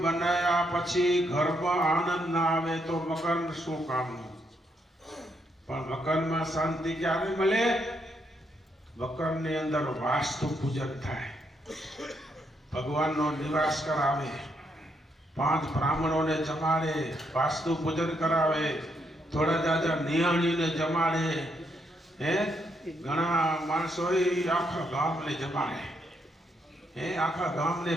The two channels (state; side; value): normal; both; correlation 0.76